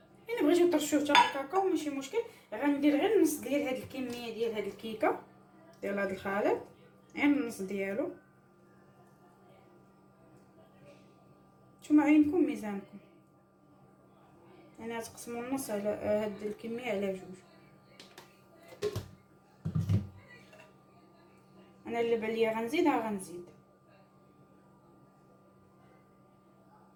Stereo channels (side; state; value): both; identical; correlation 1.00